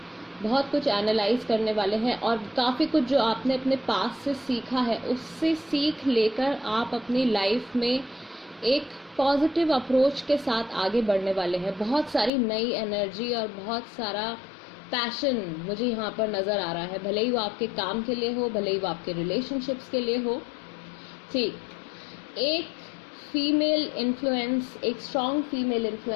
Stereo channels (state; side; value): drops out; right; at 12.3 s